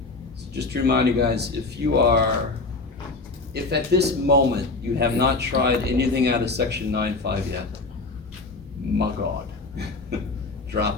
So just to remind you guys, if at this moment you have not tried anything out of section 9.5 yet, my God,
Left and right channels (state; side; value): quieter; right; 3.6 dB